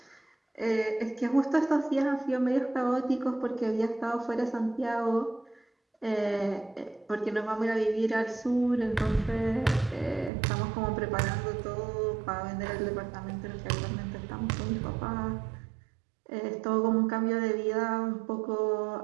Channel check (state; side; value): drops out; left; at 10.3 s